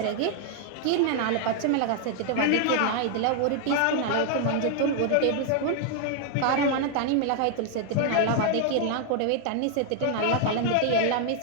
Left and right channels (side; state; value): both; different; correlation 0.00